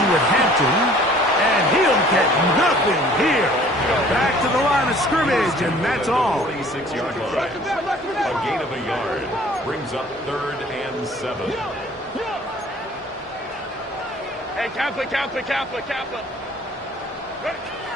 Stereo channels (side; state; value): both; normal; correlation 0.52